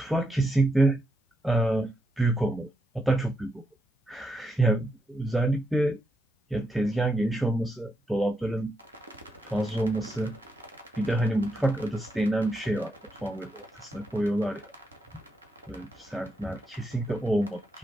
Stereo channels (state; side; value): normal; both; correlation 0.83